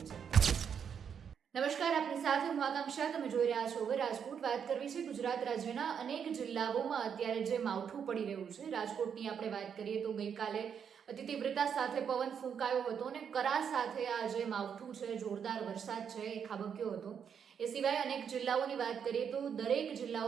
છે। નમસ્કાર, આપની સાથે હું આકાંક્ષા, તમે જોઈ રહ્યા છો હવે રાજકોટ। વાત કરવી છે ગુજરાત રાજ્યના અનેક જિલ્લાઓમાં અત્યારે જે માવઠું પડી રહ્યું છે। રાજકોટની આપણે વાત કરીએ તો ગઈકાલે અતિ તીવ્રતા સાથે પવન ફૂંકાયો હતો અને કરા સાથે આ જે માવઠું છે, જોરદાર વરસાદ છે એ ખાબક્યો હતો। એ સિવાય અનેક જિલ્લાઓની વાત કરીએ તો દરેક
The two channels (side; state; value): left; quieter; 7.5 dB